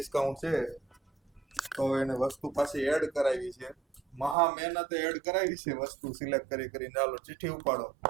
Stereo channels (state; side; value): drops out; left; at 4.4 s